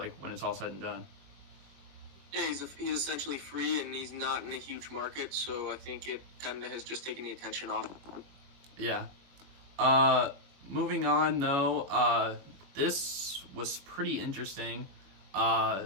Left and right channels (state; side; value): late; left; 22 ms